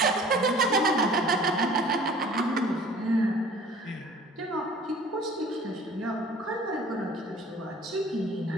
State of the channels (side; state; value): both; normal; correlation 0.48